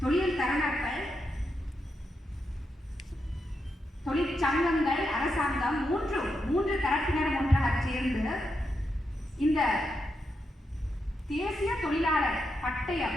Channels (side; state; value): both; normal; correlation 0.84